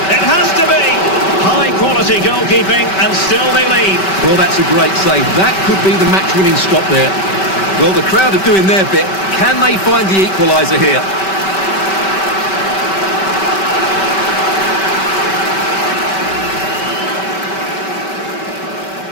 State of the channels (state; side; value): late; right; 5.2 ms